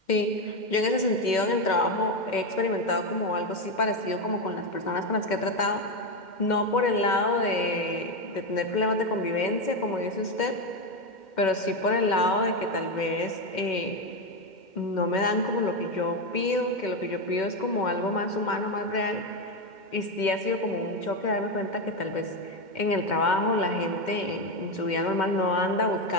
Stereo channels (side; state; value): right; late; 2.1 ms